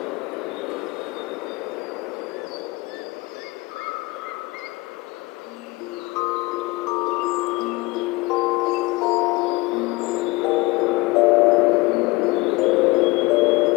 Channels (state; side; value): quieter; right; 22.8 dB